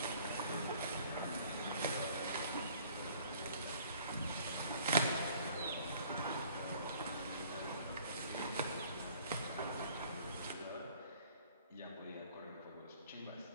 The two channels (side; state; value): both; inverted; correlation -0.55